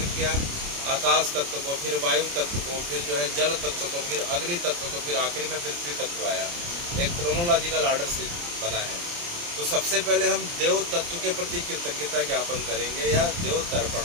किया? आकाश तत्व को, फिर वायु तत्व को, फिर जो है जल तत्व को, फिर अग्नि तत्व को, फिर आखिरी में पृथ्वी तत्व आया। एक क्रोनोलॉजिकल ऑर्डर से बना है। तो सबसे पहले हम देव तत्व के प्रति कृतज्ञता ज्ञापन करेंगे या देव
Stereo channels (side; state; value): left; late; 29 ms